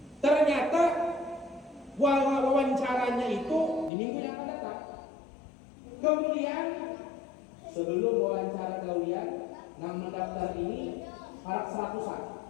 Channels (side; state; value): right; drops out; at 3.9 s